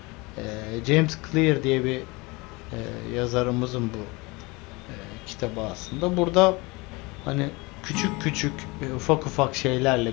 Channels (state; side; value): quieter; right; 25.2 dB